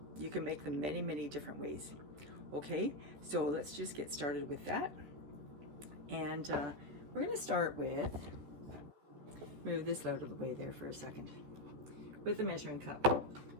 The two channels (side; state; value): left; late; 14 ms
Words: you can make them many, many different ways. Okay, so let's just get started with that. And we're going to start with, move this out of the way there for a second, with a measuring cup.